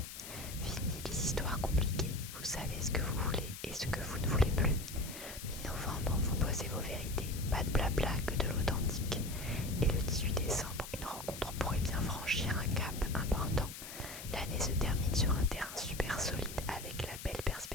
Fini les histoires compliquées. Vous savez ce que vous voulez et ce que vous ne voulez plus. Mi-novembre, vous posez vos vérités. Pas de blabla, que de l'authentique. Et le 18 décembre, une rencontre pourrait bien franchir un cap important. L'année se termine sur un terrain super solide avec la belle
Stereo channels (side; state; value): left; noise; hiss, 11 dB below the sound